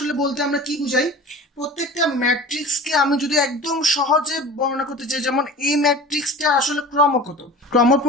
বলতে আমরা কি বুঝাই? প্রত্যেকটা ম্যাট্রিক্সকে আমি যদি একদম সহজে বর্ণনা করতে চাই, যেমন এই ম্যাট্রিক্সটা আসলে ক্রম কত, ক্রম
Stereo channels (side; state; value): both; normal; correlation 0.38